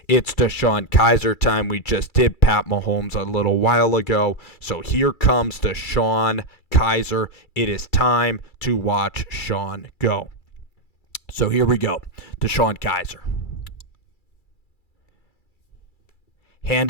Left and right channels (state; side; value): late; right; 2.3 ms